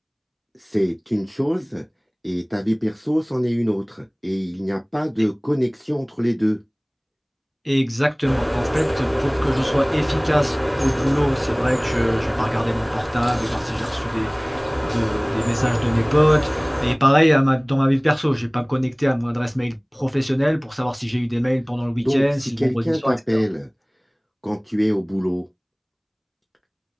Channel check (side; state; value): both; identical; correlation 1.00